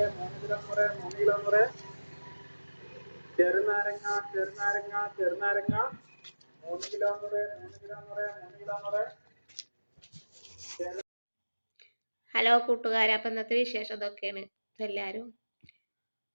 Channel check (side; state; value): both; inverted; correlation -1.00